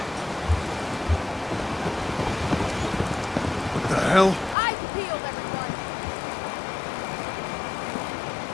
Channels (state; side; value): drops out; right; at 4.5 s